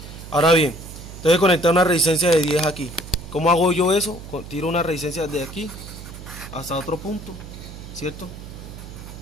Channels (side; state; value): right; noise; hum, 13 dB below the sound